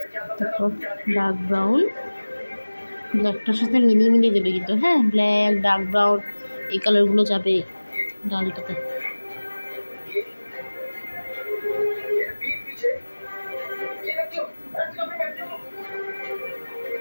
তারপর ডার্ক ব্রাউন ব্ল্যাকটার সাথে মিলিয়ে মিলিয়ে দেবে কিন্তু। হ্যাঁ, ব্ল্যাক ডার্ক ব্রাউন এই কালারগুলো যাবে ডালটাতে।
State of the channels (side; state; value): both; inverted; correlation -1.00